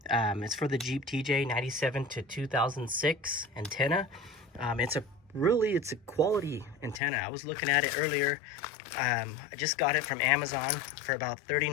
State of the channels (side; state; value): right; drops out; at 7.0 s